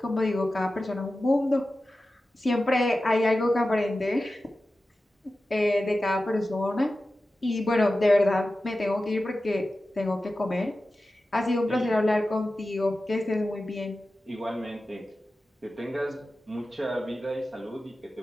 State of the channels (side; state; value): both; normal; correlation 0.94